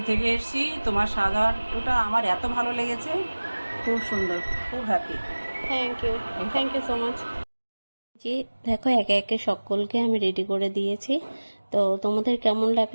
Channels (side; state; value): both; inverted; correlation -1.00